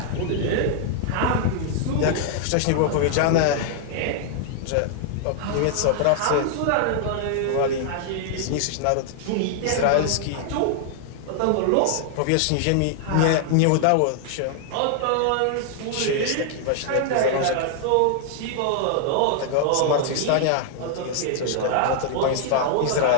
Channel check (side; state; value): both; different; correlation 0.00